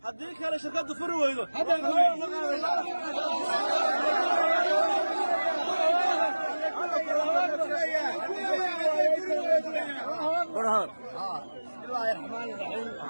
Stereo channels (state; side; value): inverted; both; correlation -1.00